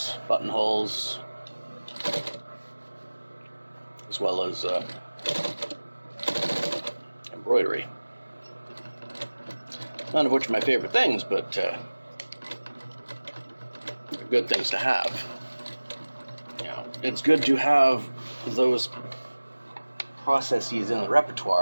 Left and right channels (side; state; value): both; inverted; correlation -1.00